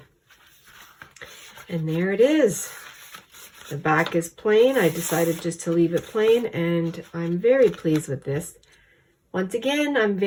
And there it is. The back is plain. I decided just to leave it plain, and I'm very pleased with this. Once again, I'm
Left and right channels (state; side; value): identical; both; correlation 1.00